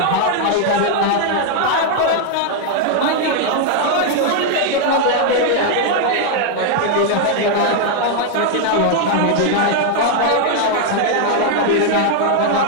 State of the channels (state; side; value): different; both; correlation 0.00